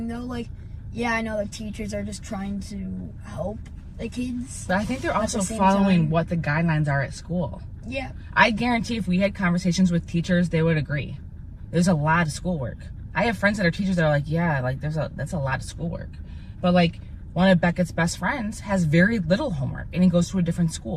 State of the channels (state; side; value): identical; both; correlation 1.00